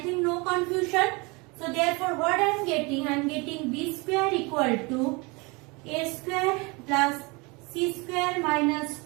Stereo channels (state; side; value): quieter; left; 27.4 dB